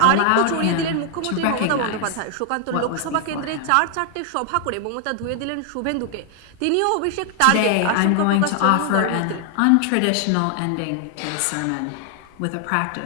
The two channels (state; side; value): different; both; correlation 0.00